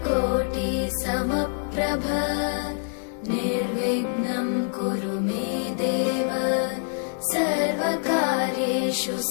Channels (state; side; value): silent; right; 59 dB below the other